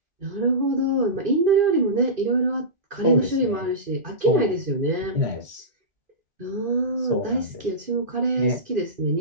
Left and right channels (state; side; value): late; left; 2.5 ms